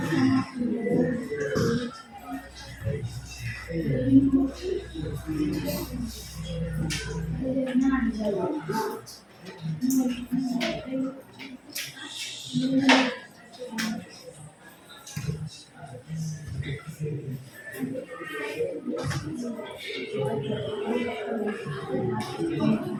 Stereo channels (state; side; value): identical; both; correlation 1.00